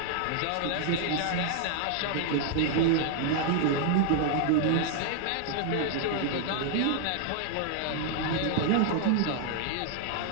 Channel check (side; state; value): both; different; correlation 0.00